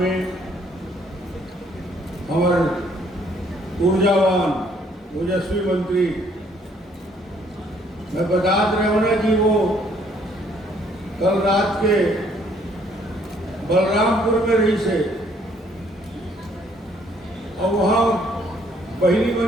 में हमारे ऊर्जावान ओजस्वी मंत्री मैं बता रहे हो ना कि वो कल रात के बलरामपुर में रही से, और वहाँ बहिनी मन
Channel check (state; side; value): normal; both; correlation 0.65